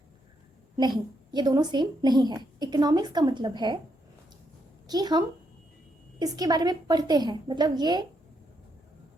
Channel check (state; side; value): normal; both; correlation 0.78